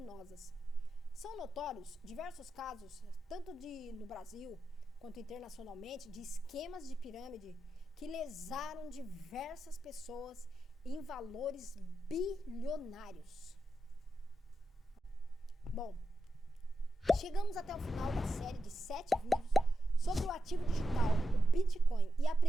São notórios diversos casos, tanto no Brasil quanto internacionalmente, de esquemas de pirâmide que lesaram diversas pessoas em valores bilionários. Bom, chegamos até o final da série de 7 vídeos sobre o ativo digital, o Bitcoin, e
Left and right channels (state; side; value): normal; both; correlation 0.88